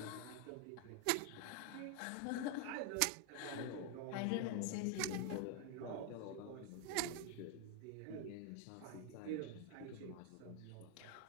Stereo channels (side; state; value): both; different; correlation 0.01